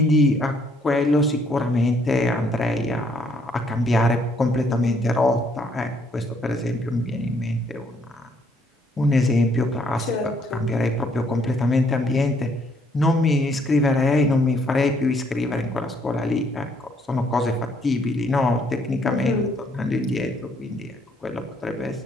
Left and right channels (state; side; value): normal; both; correlation 0.68